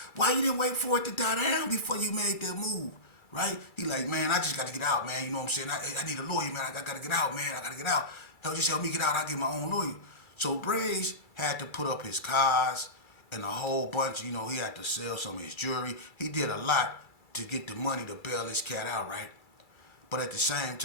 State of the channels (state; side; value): late; right; 2.3 ms